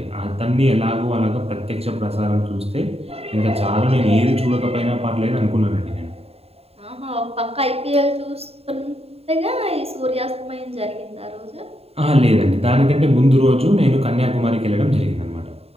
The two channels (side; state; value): left; late; 0.29 ms